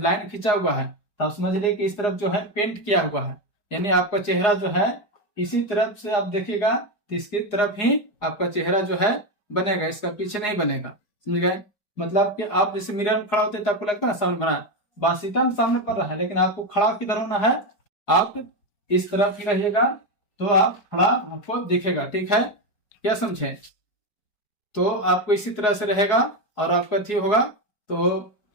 लाइन खींचा हुआ है तो आप समझ लीजिए कि इस तरफ जो है पेंट किया हुआ है, यानी आपका चेहरा जो है इसी तरफ से आप देखिएगा तो इसकी तरफ ही आपका चेहरा जो है बनेगा, इसका पीछे नहीं बनेगा। समझ गए? मतलब कि आप जैसे मिरर में खड़ा होते तो आपको लगता है सामने बना है, बासीतम सामने पड़ रहा है, लेकिन आपको खड़ा किधर होना है, आप इस तरफ ही रहिएगा तो आप खड़ा आपको दिखेगा। ठीक है, क्या समझे? तो आपको इसी तरह से रहेगा और आपका ठीक होगा तो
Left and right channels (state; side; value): late; right; 4.8 ms